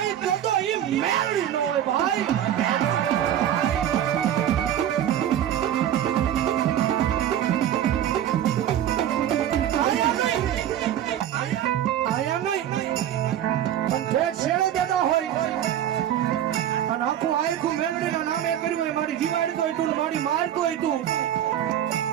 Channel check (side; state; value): left; quieter; 10.8 dB